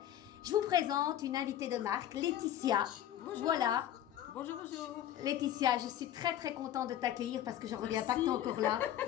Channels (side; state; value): right; quieter; 11.6 dB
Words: Je vous présente une invitée de marque, Laetitia. Bonjour. Voilà. Bonjour. Laetitia, je suis très contente de t'accueillir parce que je ne reviens pas que tu es encore là.